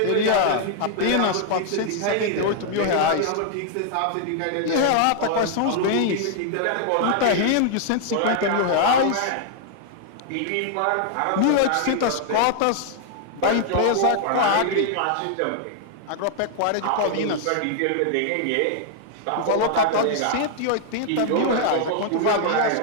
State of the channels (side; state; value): both; different; correlation -0.01